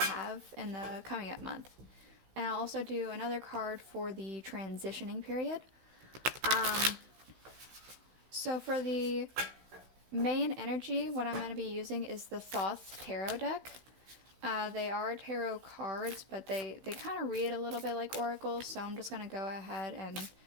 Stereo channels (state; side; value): late; left; 16 ms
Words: in the coming up month. And I'll also do another card for the transitioning period. So for the main energy, what I'm going to be using is the Thoth tarot deck. They are tarot cards, but they kind of read a little bit like oracles, so I'm just going to go ahead and